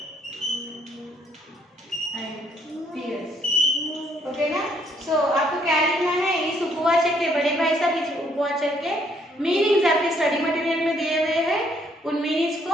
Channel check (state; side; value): normal; both; correlation 0.68